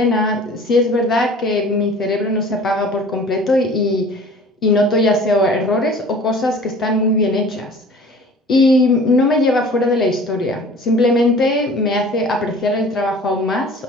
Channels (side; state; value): both; normal; correlation 0.46